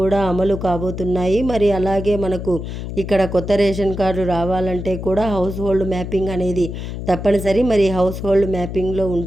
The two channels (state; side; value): noise; left; hum, 7 dB below the sound